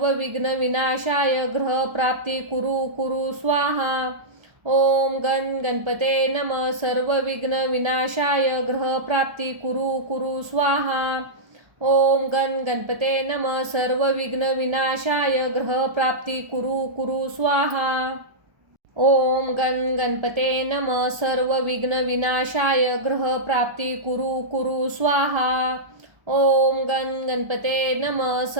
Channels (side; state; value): left; late; 1.2 ms